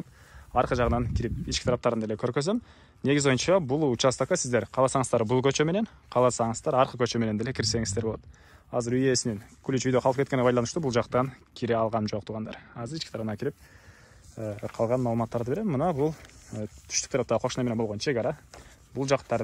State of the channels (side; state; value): both; identical; correlation 1.00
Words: аркы жагынан кирип ички тараптарын деле көргөзөм. Негизи боюнча бул участокко сиздер кааласаңыздар бул көчө менен, кааласаңыздар аркы көчө менен деле кирсеңиздер болот. Азыр үй ээсинин ключ үйдө калып кеткенине байланыштуу бул жактан кире алгам жок тугандар. Азыр ички тарабына кирип калган маалыматтарды берем. Мына бул түштүк тарапта кошуна менен болгон чек ара. Бул жактары